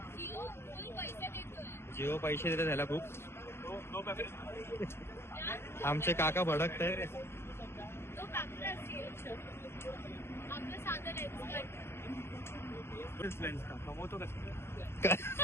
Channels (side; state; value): right; late; 0.12 ms